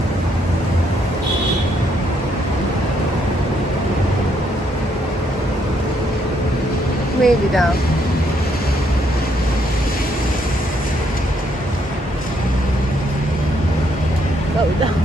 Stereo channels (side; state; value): both; normal; correlation 0.72